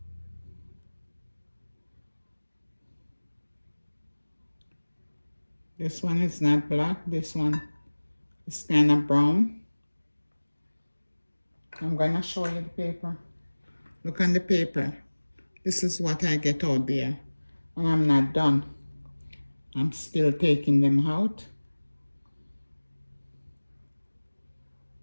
This one is not black, this one is kind of brown. I'm gonna show you the paper. Look on the paper. This is what I get out there. And I'm not done. I'm still taking them out.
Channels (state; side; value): inverted; both; correlation -1.00